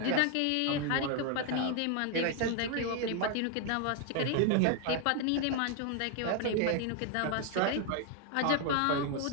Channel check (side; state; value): both; different; correlation 0.01